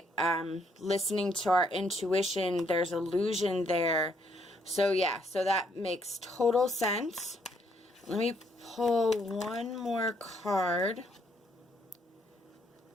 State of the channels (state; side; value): normal; both; correlation 0.70